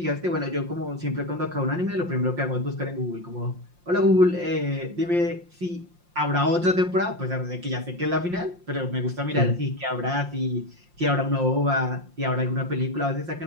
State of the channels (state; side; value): late; left; 5.7 ms